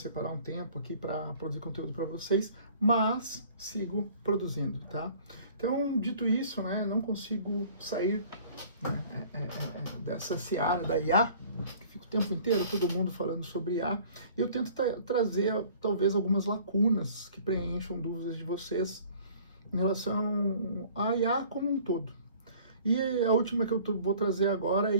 um tempo aqui para produzir conteúdo para vocês, mas sigo produzindo, tá? Então, dito isso, né, não consigo sair, né, dessa seara da IA, que fica o tempo inteiro todo mundo falando sobre IA. Eu tento trazer talvez algumas lacunas que preencham dúvidas de vocês em relação à IA como um todo. E a última que eu vou trazer agora é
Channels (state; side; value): inverted; both; correlation -0.52